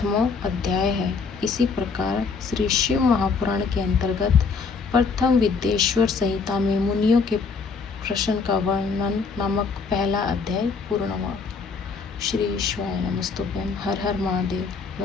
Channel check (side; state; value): right; quieter; 4.9 dB